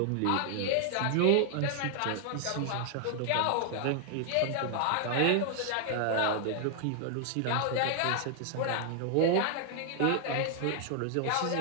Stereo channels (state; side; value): different; both; correlation 0.00